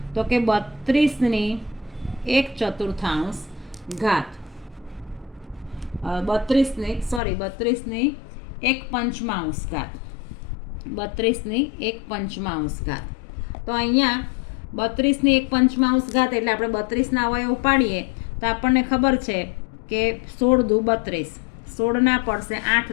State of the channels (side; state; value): right; drops out; at 7.2 s